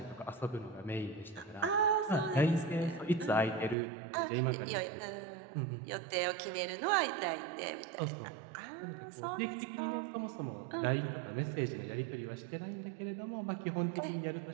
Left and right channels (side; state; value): left; drops out; at 3.8 s